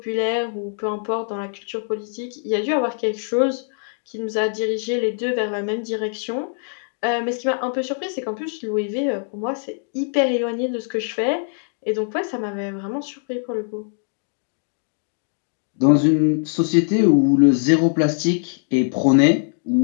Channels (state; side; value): silent; right; 64 dB below the other